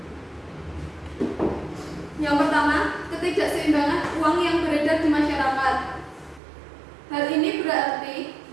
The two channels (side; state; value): left; drops out; at 6.4 s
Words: Yang pertama, ketidakseimbangan uang yang beredar di masyarakat. Hal ini berarti